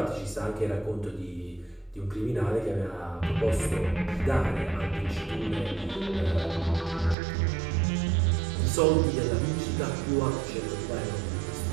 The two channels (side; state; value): left; drops out; at 7.2 s